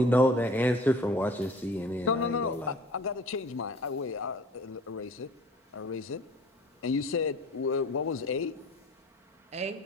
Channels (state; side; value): normal; both; correlation 0.47